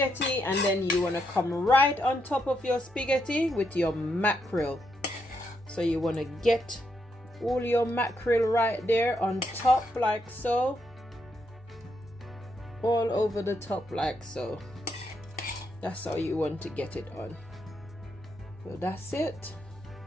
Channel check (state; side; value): normal; both; correlation 0.80